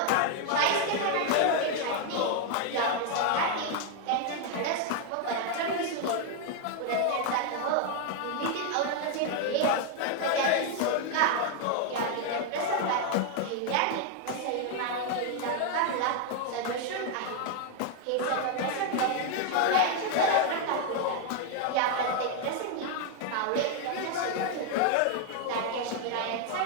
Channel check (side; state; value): both; different; correlation 0.00